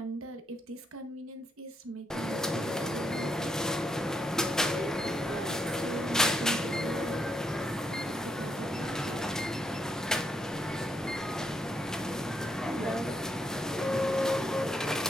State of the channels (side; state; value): both; normal; correlation 0.78